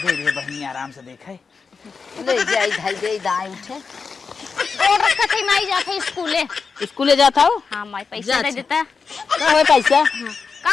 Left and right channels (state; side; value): quieter; right; 5.1 dB